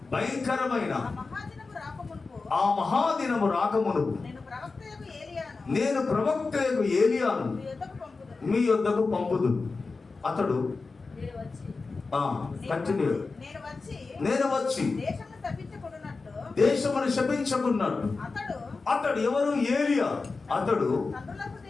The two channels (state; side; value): quieter; right; 4.1 dB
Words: భయంకరమైన ఆ మహాదినము రాకమునుపు నేను ప్రవక్తయగు ఏలియాను మీ యొద్దకు పంపుదును. అతడు కంటిన్యూ నేను వచ్చి దేశమును శపించకున్నట్టు. అతడు ఎవరు? ఏలియా. అతడు